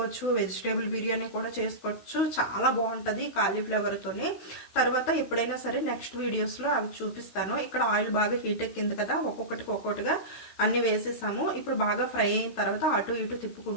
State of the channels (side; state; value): right; late; 16 ms